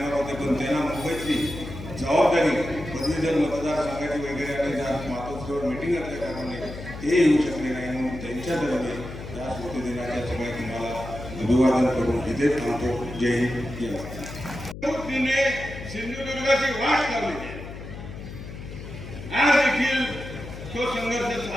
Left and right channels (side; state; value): left; noise; hum, 11 dB below the sound